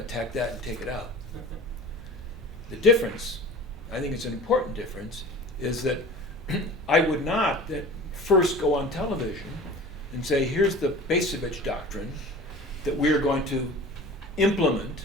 that and take it out. The difference, I think it's an important difference, is that I would not first go on television and say, here's the Bacevich doctrine that we're going to implement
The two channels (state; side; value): normal; both; correlation 0.39